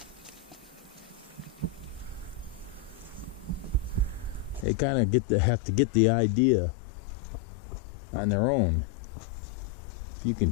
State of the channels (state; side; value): drops out; right; at 4.7 s